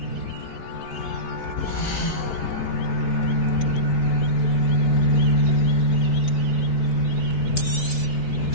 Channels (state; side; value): late; right; 4.6 ms